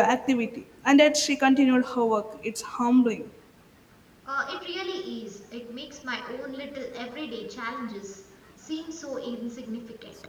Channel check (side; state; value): both; identical; correlation 1.00